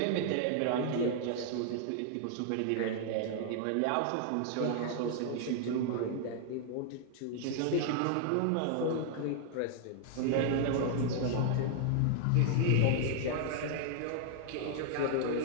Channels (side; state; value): both; different; correlation -0.01